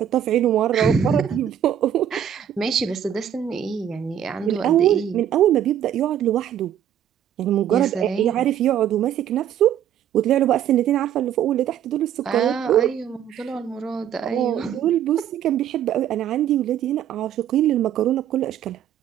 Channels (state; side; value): quieter; left; 10.0 dB